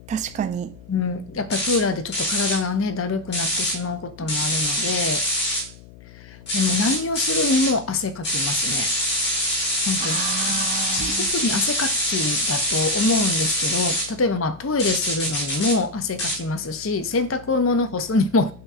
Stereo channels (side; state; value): left; noise; hum, 21 dB below the sound